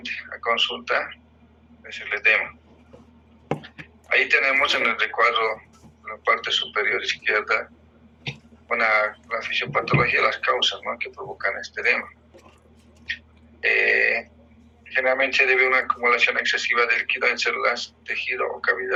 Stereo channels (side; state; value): both; identical; correlation 1.00